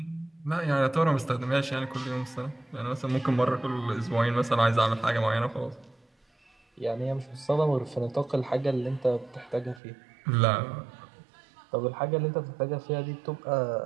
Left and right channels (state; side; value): drops out; left; at 9.8 s